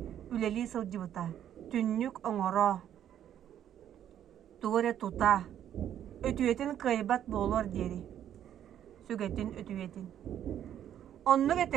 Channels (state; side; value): quieter; left; 10.4 dB